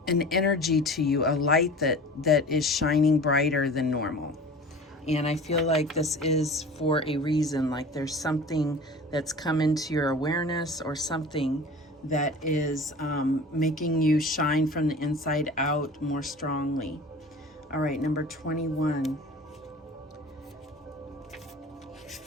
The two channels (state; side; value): normal; both; correlation 0.40